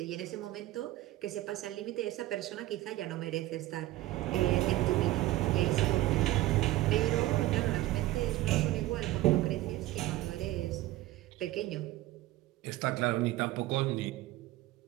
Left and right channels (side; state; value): left; quieter; 16.6 dB